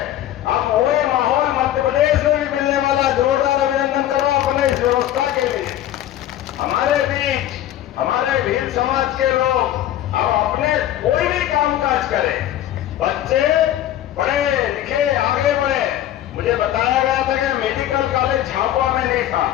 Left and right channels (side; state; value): right; quieter; 12.7 dB